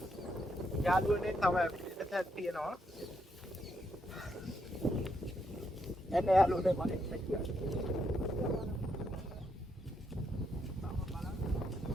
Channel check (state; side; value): normal; both; correlation 0.78